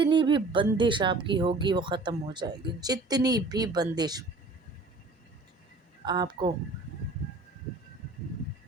بھی بندش آپ کی ہوگی وہ ختم ہو جائے گی، جتنی بھی بندش آپ کو۔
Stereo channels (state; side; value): quieter; left; 3.3 dB